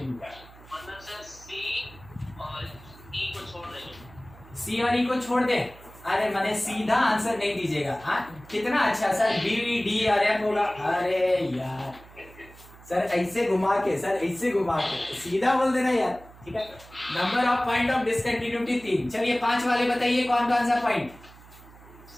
मतलब सर C और E को छोड़ देंगे। C और E को छोड़ दे, अरे मैंने सीधा आंसर नहीं दीजिएगा। हाँ कितना अच्छा सर, B D और F होगा। अरे यार सर ऐसे घुमा के, सर ऐसे घुमा के सीधा बोल देना यार। ठीक है, number of point of discontinuity 3। चलिए 5 वाले बताइए कौन कौन सा point.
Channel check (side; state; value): right; noise; hum, 21 dB below the sound